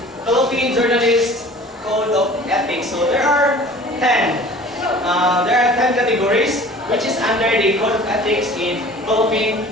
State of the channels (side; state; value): both; normal; correlation 0.45